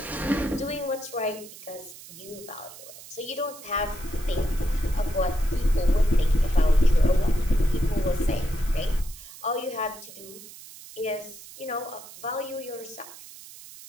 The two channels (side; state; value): right; noise; hiss, 17 dB below the sound